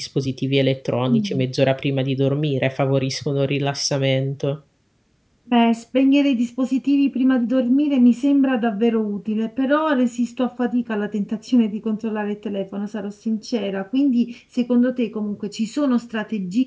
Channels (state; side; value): identical; both; correlation 1.00